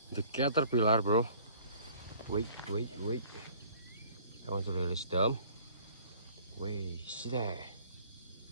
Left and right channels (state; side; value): inverted; both; correlation -0.53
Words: caterpillar, bro. Wait. I want to release them. Wait, see that?